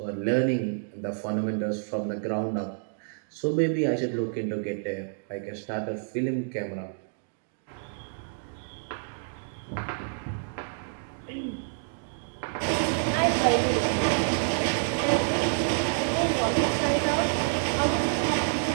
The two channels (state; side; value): silent; left; digital silence